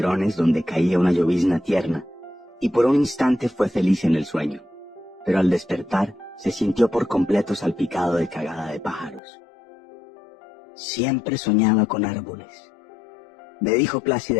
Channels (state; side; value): drops out; right; at 9.2 s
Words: donde caía una llovizna tierna, y por un instante fue feliz en el sueño, pero al despertar se sintió por completo salpicado de cagada de pájaros. Siempre soñaba con árboles, me dijo